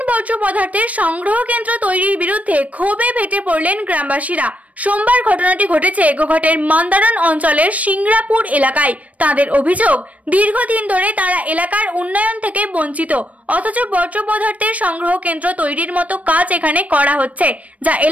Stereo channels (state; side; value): late; left; 0.068 ms